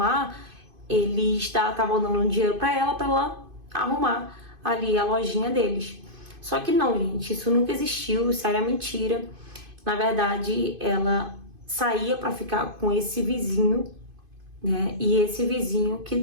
eles estavam dando um dinheiro pra ela arrumar ali a lojinha deles. Só que não, gente, isso nunca existiu, isso era mentira. Na verdade, ela saía pra ficar com esse vizinho, né? E esse vizinho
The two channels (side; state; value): left; late; 2.5 ms